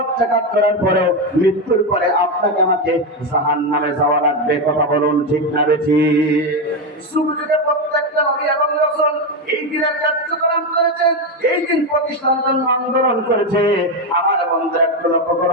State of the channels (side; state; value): both; normal; correlation 0.10